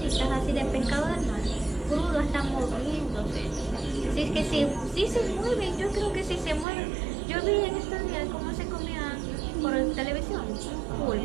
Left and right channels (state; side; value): drops out; left; at 6.7 s